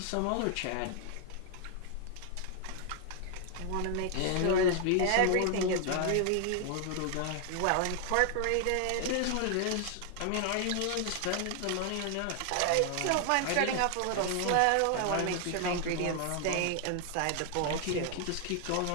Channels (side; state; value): both; different; correlation 0.00